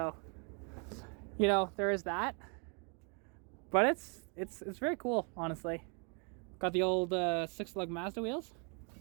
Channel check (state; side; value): quieter; left; 36.5 dB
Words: you know there is that. But it's very cool, honestly. Got the old 6-lug Mazda wheels,